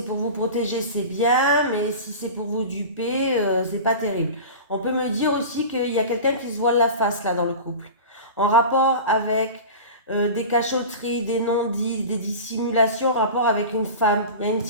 pour vous protéger, c'est bien, mais si c'est pour vous duper, c'est pas terrible. On peut me dire aussi qu'il y a quelqu'un qui se voile la face là dans le couple, en rapport avec des cachotteries, des non-dits, des dissimulations, en rapport avec une femme. Il y a une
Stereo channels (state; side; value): inverted; both; correlation -0.32